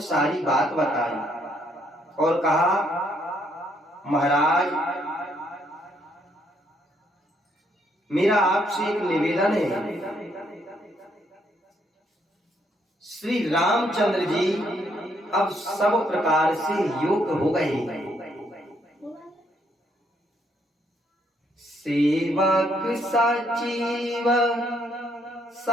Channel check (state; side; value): normal; both; correlation 0.71